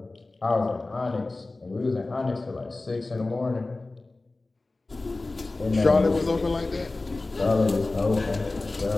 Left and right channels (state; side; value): quieter; right; 3.2 dB